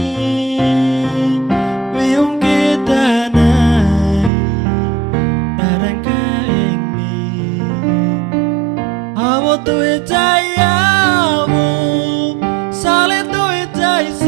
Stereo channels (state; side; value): drops out; left; at 4.3 s